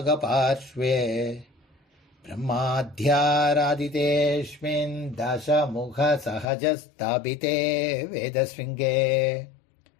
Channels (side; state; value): right; drops out; at 6.5 s